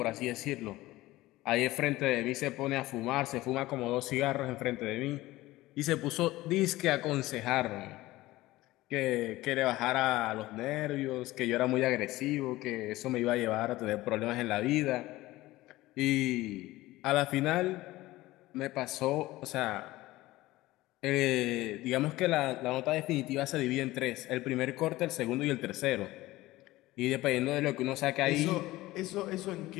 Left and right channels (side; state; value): right; quieter; 17.9 dB